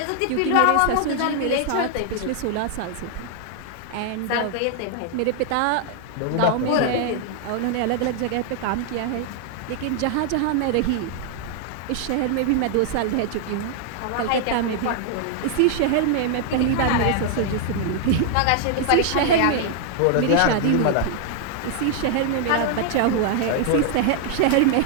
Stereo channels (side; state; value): both; different; correlation 0.00